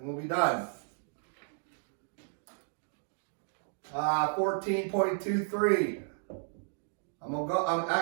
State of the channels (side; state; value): left; silent; digital silence